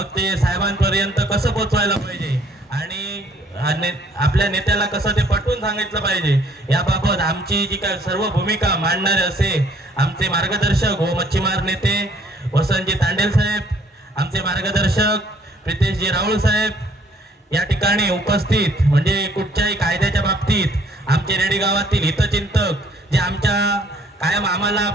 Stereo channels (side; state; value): both; normal; correlation 0.62